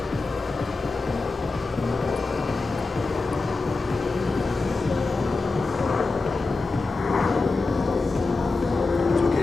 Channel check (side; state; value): right; quieter; 3.6 dB